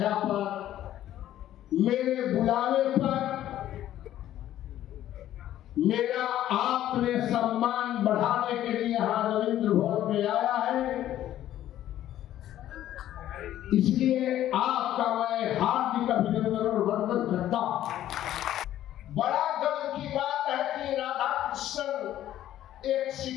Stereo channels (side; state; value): right; quieter; 12.5 dB